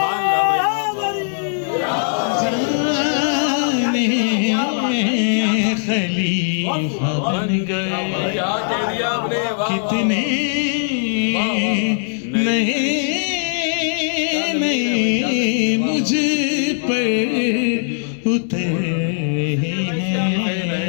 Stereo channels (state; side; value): silent; right; digital silence